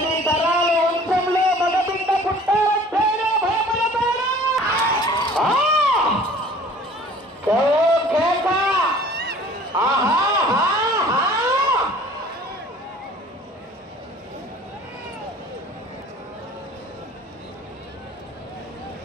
తరాల వంశంలో మగబిడ్డ పుట్టారంటేనే భయపడతారా? కేక ఆహా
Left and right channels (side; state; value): both; normal; correlation 0.49